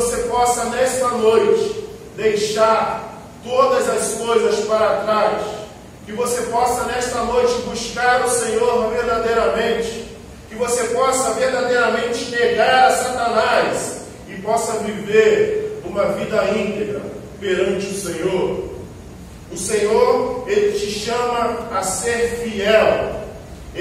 possa nesta noite deixar todas as coisas para trás, que você possa nesta noite buscar o Senhor verdadeiramente, que você possa verdadeiramente negar a Satanás e possa viver uma vida íntegra perante o Senhor. O Senhor, Ele te chama a ser fiel.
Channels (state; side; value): identical; both; correlation 1.00